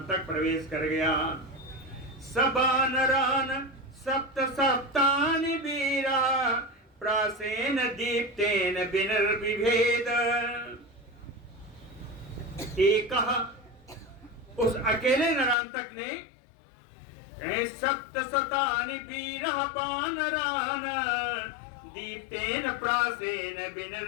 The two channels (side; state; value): right; drops out; at 15.6 s